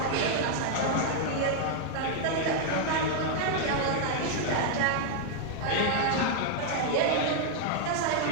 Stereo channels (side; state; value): both; different; correlation 0.00